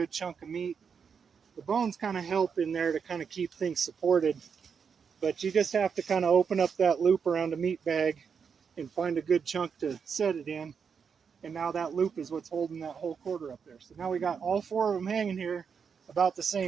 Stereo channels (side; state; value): left; quieter; 6.4 dB